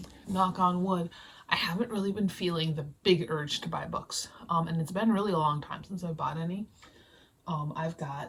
Knock on wood, I haven't really been feeling the big urge to buy books. And it's been really a long time since I bought any. I've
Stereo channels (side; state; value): both; identical; correlation 1.00